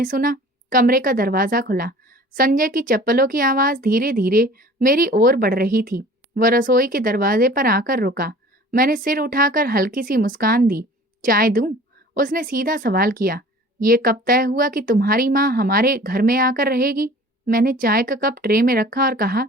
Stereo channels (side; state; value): both; normal; correlation 0.45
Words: सुना, कमरे का दरवाजा खुला। संजय की चप्पलों की आवाज धीरे धीरे मेरी ओर बढ़ रही थी। वह रसोई के दरवाजे पर आकर रुका। मैंने सिर उठाकर हल्की सी मुस्कान दी। चाय दूं? उसने सीधा सवाल किया, ये कब तय हुआ कि तुम्हारी माँ हमारे घर में आकर रहेगी? मैंने चाय का कप ट्रे में रखा और कहा,